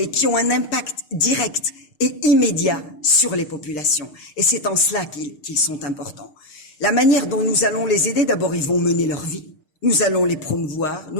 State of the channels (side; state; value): right; late; 6.6 ms